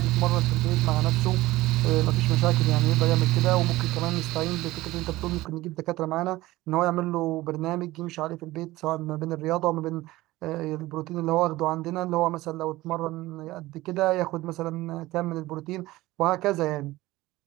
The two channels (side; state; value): left; quieter; 18.1 dB